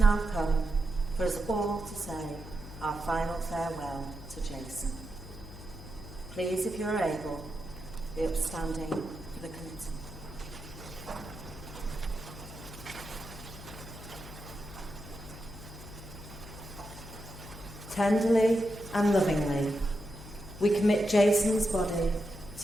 come for us all to say our final farewell to Jason. Please, if you're able, be upstanding for the committee. Tenderly and lovingly, we commit Jason's body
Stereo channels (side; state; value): left; noise; hum, 13 dB below the sound